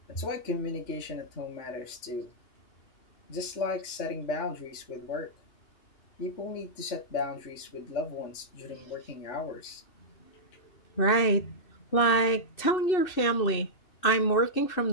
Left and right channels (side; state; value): right; late; 2.6 ms